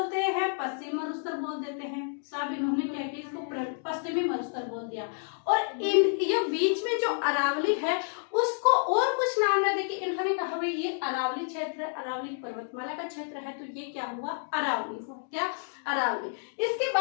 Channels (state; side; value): silent; right; digital silence